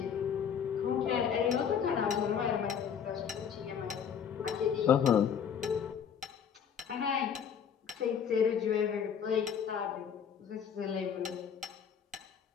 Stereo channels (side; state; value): right; quieter; 7.7 dB